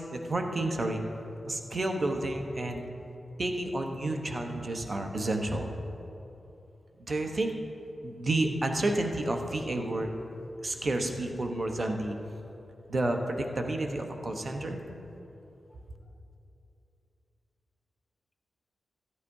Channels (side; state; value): both; normal; correlation 0.91